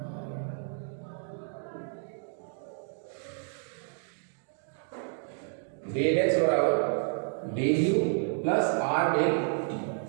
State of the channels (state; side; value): silent; left; 57 dB below the other